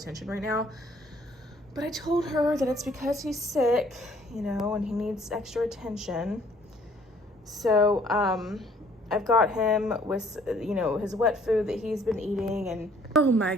right now. But I told her that it's because he's sick, you know, and he needs extra attention. So I've got him with, you know, his wet food that he's been eating, and oh my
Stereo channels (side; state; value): both; normal; correlation 0.59